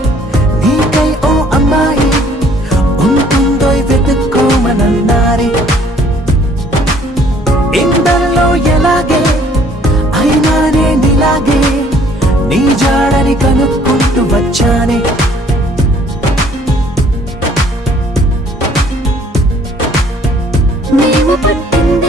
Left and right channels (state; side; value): normal; both; correlation 0.59